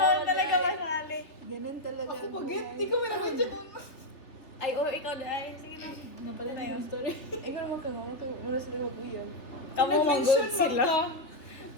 talaga masali. Ganun talaga. Ako ang pagit. buhay. Di ko manamensyon nun. Ay, oh, ikaw na. Ay, sige na. Napala na Ano yun? yung story. Ikaw naman ka nga. Mura sila mag-uyan. Kamu Nag-mention mag-good man sila. ka.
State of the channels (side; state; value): right; late; 3.2 ms